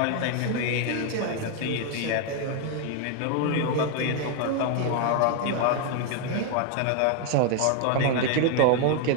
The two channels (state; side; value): different; both; correlation 0.00